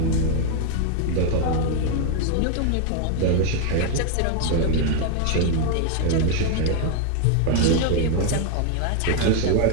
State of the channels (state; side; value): different; both; correlation 0.00